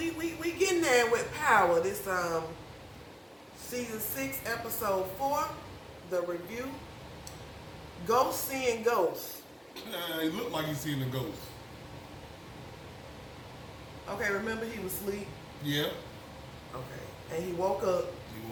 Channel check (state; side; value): identical; both; correlation 1.00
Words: there with power. This season 6, episode 4, the review. Ghost seeing ghosts. He looked like he's seeing a ghost. Okay, remember he was asleep? Yeah. Okay. And he woke up. He